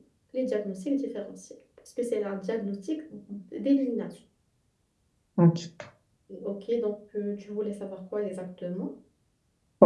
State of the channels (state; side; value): identical; both; correlation 1.00